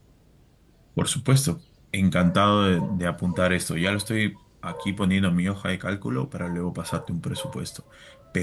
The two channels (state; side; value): identical; both; correlation 1.00